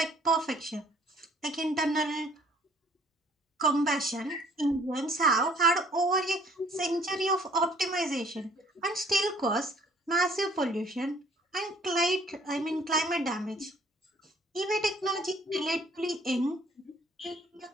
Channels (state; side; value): normal; both; correlation 0.58